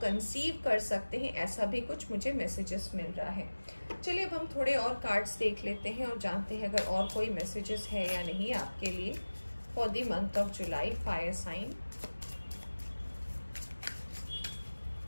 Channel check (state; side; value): inverted; both; correlation -1.00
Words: कंसीव कर सकते हैं, ऐसा भी कुछ मुझे मैसेजेस मिल रहा है। चलिए अब हम थोड़े और कार्ड्स देख लेते हैं और जानते हैं अगर और कोई मैसेजेस है या नहीं आपके लिए for the month of July fire sign.